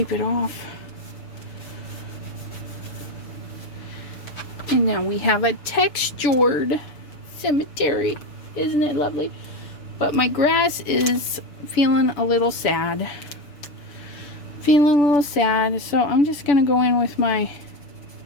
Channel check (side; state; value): right; late; 7.0 ms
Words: it off. And now we have a textured cemetery. Isn't it lovely? But my grass is feeling a little sad. So I'm just going to go in with my